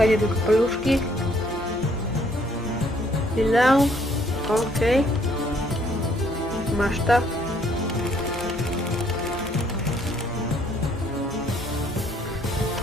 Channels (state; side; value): normal; both; correlation 0.65